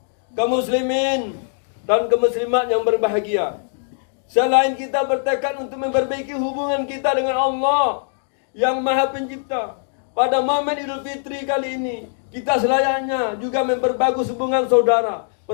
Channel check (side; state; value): right; silent; digital silence